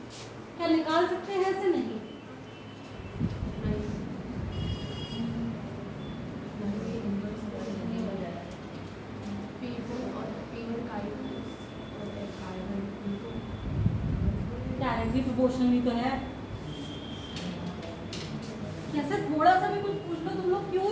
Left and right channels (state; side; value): identical; both; correlation 1.00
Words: क्या निकाल सकते हैं, ऐसे नहीं, डायरेक्टली प्रोपोर्शनल तो है। कैसे थोड़ा सा भी कुछ पूछ लो तुम लोग, क्यों